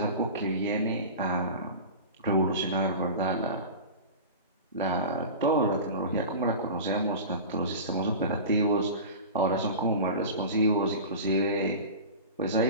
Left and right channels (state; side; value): inverted; both; correlation -0.32